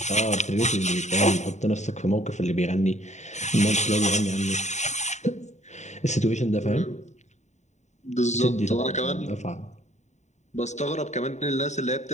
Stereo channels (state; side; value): late; right; 0.34 ms